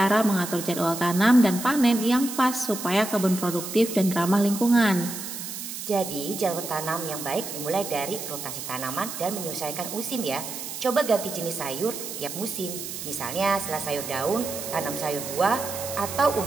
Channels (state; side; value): noise; right; hiss, 8 dB below the sound